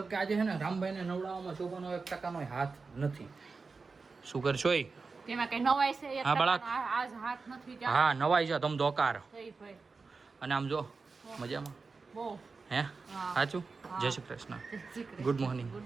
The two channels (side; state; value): left; quieter; 4.4 dB